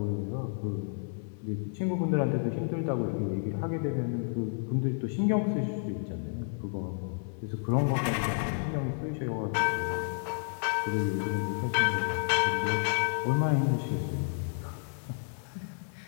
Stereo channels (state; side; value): silent; right; digital silence